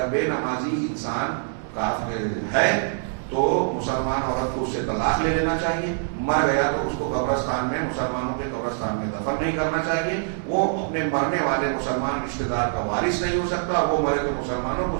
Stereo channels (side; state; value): left; silent; 62 dB below the other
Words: بے نمازی انسان کافر ہے تو مسلمان عورت کو اس سے طلاق لے لینا چاہیے. مر گیا تو اس کو قبرستان میں، مسلمانوں کے قبرستان میں دفن نہیں کرنا چاہیے. وہ اپنے مرنے والے مسلمان رشتہ دار کا وارث نہیں ہو سکتا. وہ مرے تو مسلمانوں کو